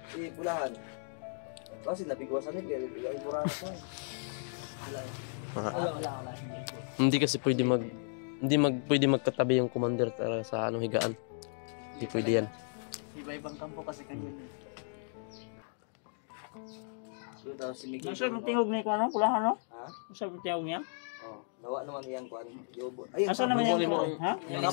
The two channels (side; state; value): right; silent; digital silence